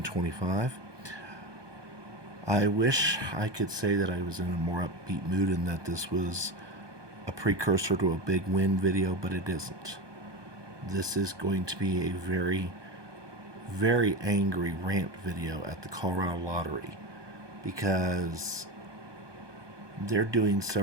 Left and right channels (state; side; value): late; left; 1.2 ms